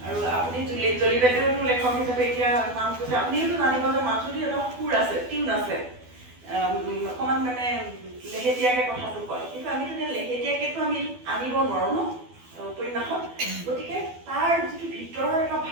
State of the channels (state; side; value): late; left; 12 ms